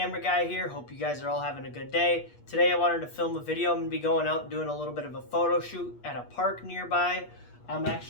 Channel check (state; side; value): late; right; 8.4 ms